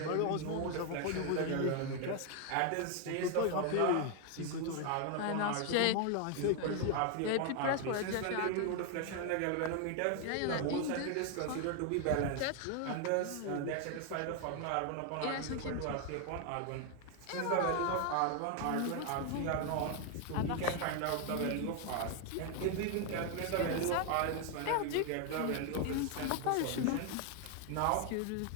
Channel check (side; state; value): both; different; correlation 0.01